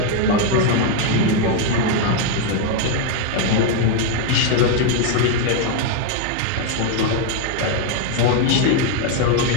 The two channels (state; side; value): different; both; correlation 0.00